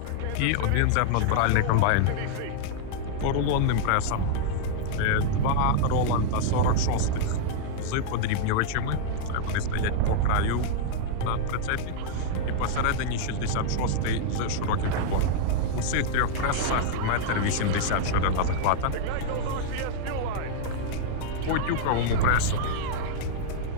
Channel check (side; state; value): both; different; correlation -0.01